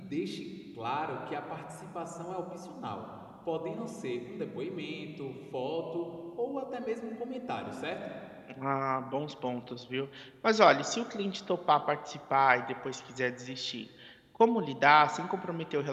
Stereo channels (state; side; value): identical; both; correlation 1.00